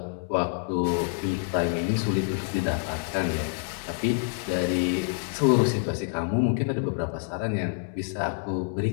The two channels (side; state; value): right; silent; 60 dB below the other